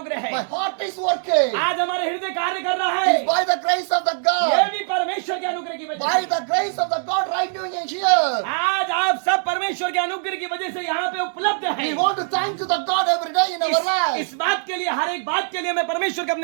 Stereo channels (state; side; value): silent; left; 64 dB below the other